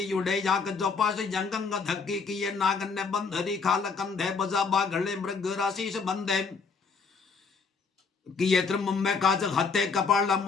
युडे जाक जोपास जंगंग धक्की किए नागन ने बंधरी खाल कंधे बजा बाघले मृग राशीस बंधे। किए त्रम में काज हते कपाला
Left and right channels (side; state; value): right; quieter; 5.0 dB